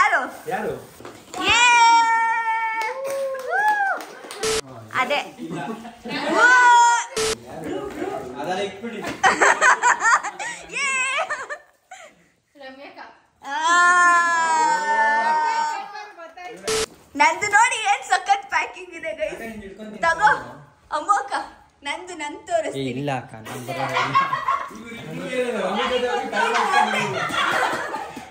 ಅದೇ ನಂದು ನೋಡಿ ಏನ್ ಸಖತ್ ಪ್ಯಾಕಿಂಗ್ ಇದೆ ಗೈಸ್. ತಗೋ ಅಮ್ಮಕ್ಕ, ನಂದು ನನ್ ತೋರಿಸ್ತೀನಿ. ಇಲ್ಲ ಅಕ್ಕ,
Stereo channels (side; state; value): both; identical; correlation 1.00